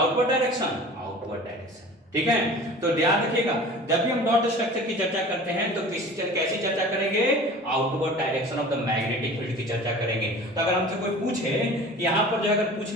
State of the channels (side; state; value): both; normal; correlation 0.41